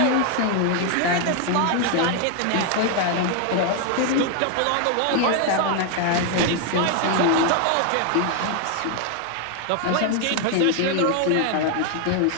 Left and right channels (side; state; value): both; different; correlation 0.00